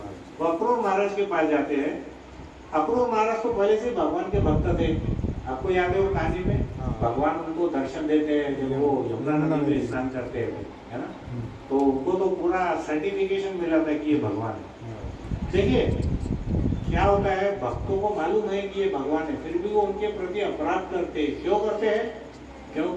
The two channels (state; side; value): identical; both; correlation 1.00